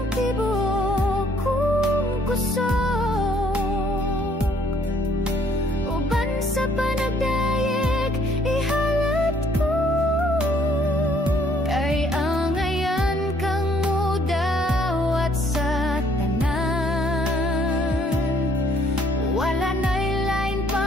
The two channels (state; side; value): normal; both; correlation 0.64